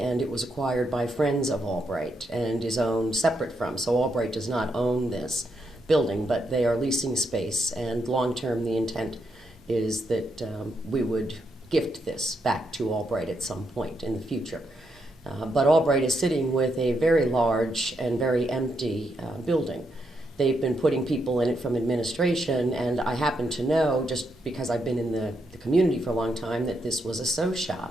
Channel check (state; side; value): normal; both; correlation 0.81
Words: it was acquired by friends of Albright and is owned separate from. So Albright does not own this building, but they are leasing space, and long-term the intent is that we would gift this back to Albright at some point in the future. But Albright is sitting with a very large and very empty building. They've been putting people in it from administration, and I happen to know, just because I've been in the community for a long time, that this was a sew